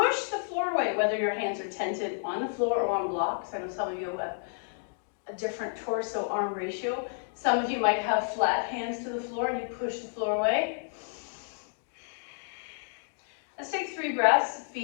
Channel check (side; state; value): right; silent; digital silence